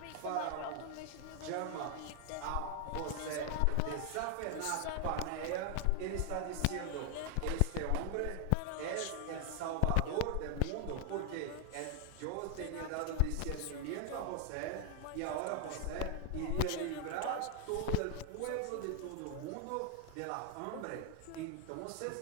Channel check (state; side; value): different; both; correlation 0.00